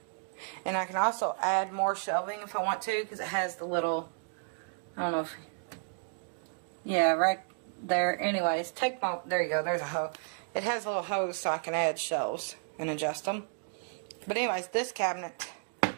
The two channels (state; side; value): silent; left; digital silence